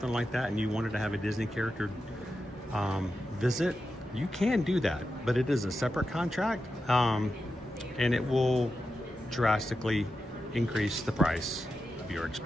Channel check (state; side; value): normal; both; correlation 0.90